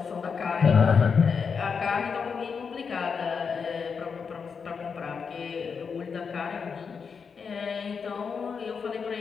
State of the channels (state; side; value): quieter; right; 5.9 dB